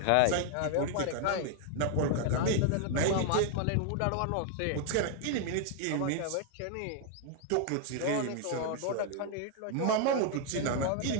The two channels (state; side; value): different; both; correlation 0.00